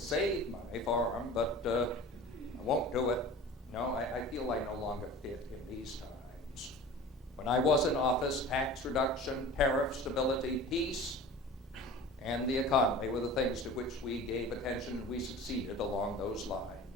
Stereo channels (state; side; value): normal; both; correlation 0.39